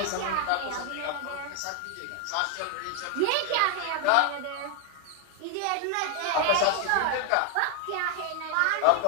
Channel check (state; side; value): different; both; correlation 0.00